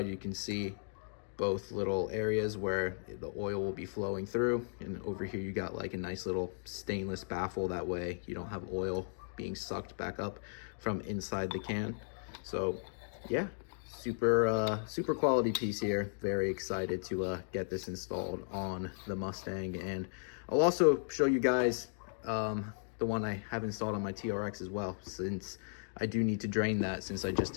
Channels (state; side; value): silent; right; digital silence